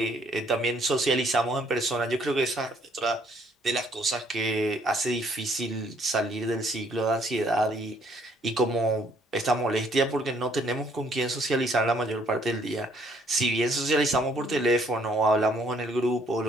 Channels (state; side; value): normal; both; correlation 0.65